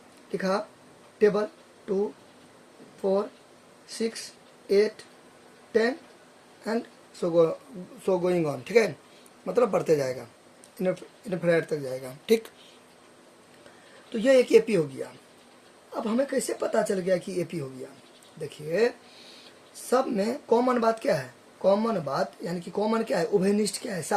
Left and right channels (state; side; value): identical; both; correlation 1.00